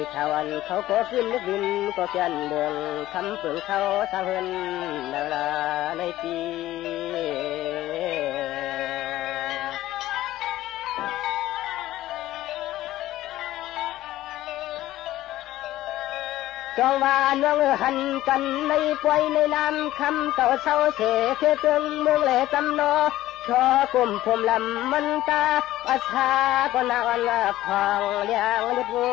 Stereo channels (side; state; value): right; quieter; 15.1 dB